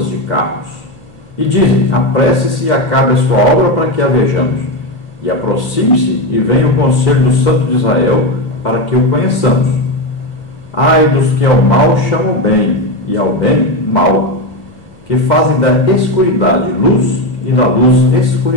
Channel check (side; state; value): right; late; 2.5 ms